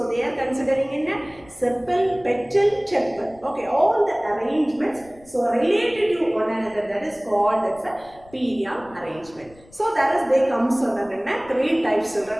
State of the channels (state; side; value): noise; left; rumble, 25 dB below the sound